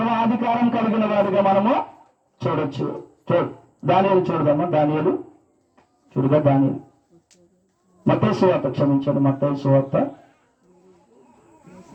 కలిగిన వాడిగా మనము చూడొచ్చు. దానియేలు చూడదామా? దానియేలు మత్తయి సువార్త, క్షమించండి, మత్తయి సువార్త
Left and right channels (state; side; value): identical; both; correlation 1.00